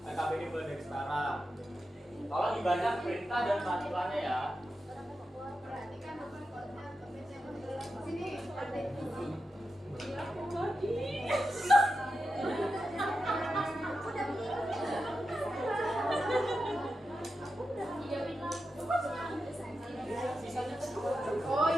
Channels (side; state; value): both; normal; correlation 0.89